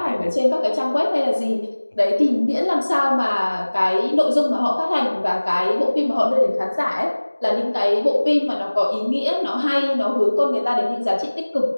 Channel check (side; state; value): both; inverted; correlation -1.00